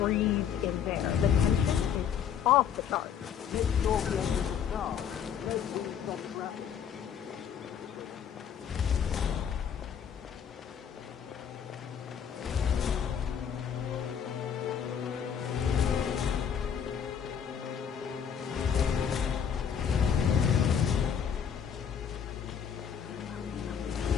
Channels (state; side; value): quieter; right; 8.0 dB